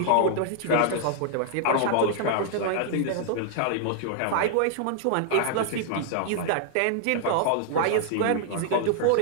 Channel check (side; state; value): both; different; correlation -0.01